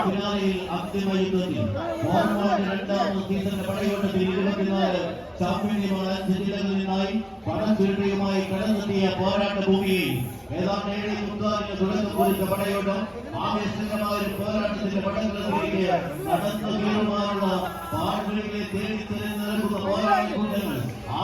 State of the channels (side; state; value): both; identical; correlation 1.00